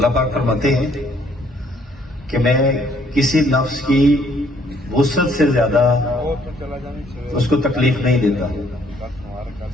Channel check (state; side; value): normal; both; correlation 0.65